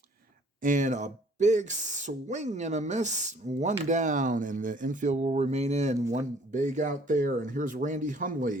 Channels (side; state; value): both; normal; correlation 0.57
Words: And a big swing and a miss. One down, and the infield will remain in. One big out there. And here's Randy